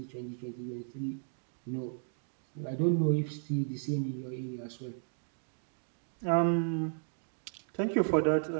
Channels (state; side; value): silent; left; digital silence